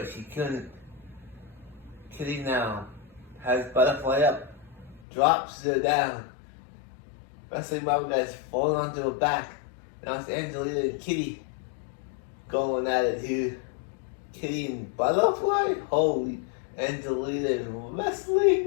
she couldn't. Kitty now has Butterfly up, drops her down. Wrestling Mama guy's falling onto her back. Now it's Angelina and Kitty going at it here. Kitty and Butterfly? Holy, Angelina and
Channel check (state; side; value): drops out; right; at 5.0 s